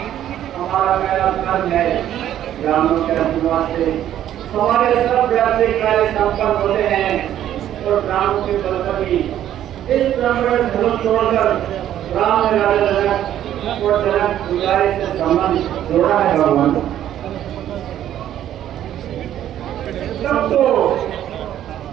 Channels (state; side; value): quieter; left; 11.5 dB